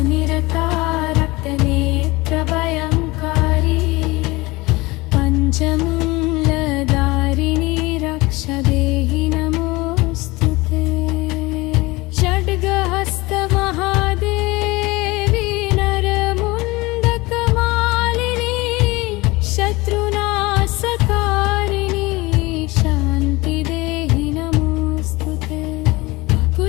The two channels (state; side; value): quieter; right; 22.2 dB